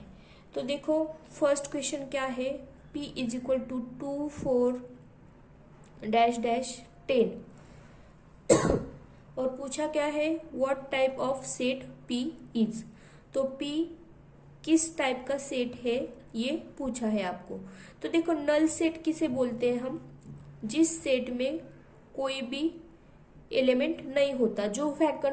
तो देखो, फर्स्ट क्वेश्चन क्या है, p is equal to 2 4 dash dash 10 और पूछा क्या है, what type of set p is. तो p किस टाइप का सेट है ये पूछा है आपको। तो देखो, नल सेट किसे बोलते हैं हम? जिस सेट में कोई भी एलिमेंट नहीं होता, जो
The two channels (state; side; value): identical; both; correlation 1.00